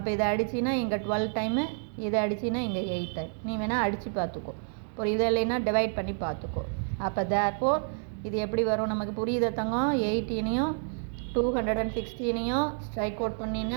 இதை அடிச்சின்னா இங்கே 12 டைமு, இதை அடிச்சின்னா இங்கே 8 டைம். நீ வேணால் அடித்து பார்த்துக்கோ. அப்புறம் இதை இல்லைன்னா டிவைட் பண்ணி பார்த்துக்கோ. அப்போ தேர்ஃபோர் இது எப்படி வரும் நமக்கு புரியுத தங்கம்? 18ஐயும் 216ஐயும் ஸ்ட்ரைக் அவுட்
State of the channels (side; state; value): left; silent; digital silence